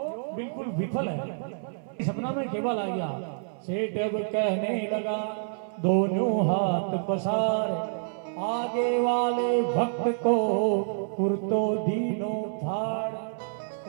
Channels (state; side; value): silent; left; 59 dB below the other